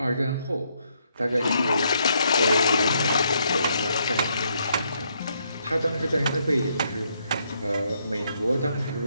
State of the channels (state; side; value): inverted; both; correlation -0.74